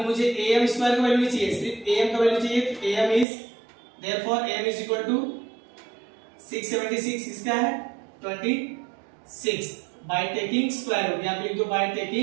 मुझे AM स्क्वायर का वैल्यू नहीं चाहिए, सिर्फ AM का वैल्यू चाहिए। तो AM is therefore AM is equal to 676, इसका है 26 बाय टेकिंग स्क्वायर रूट। यहाँ पे लिख दो by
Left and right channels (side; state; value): left; drops out; at 3.2 s